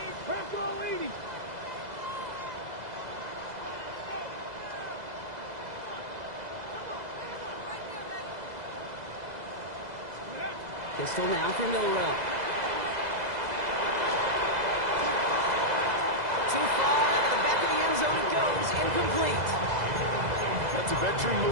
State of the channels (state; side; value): late; left; 2.0 ms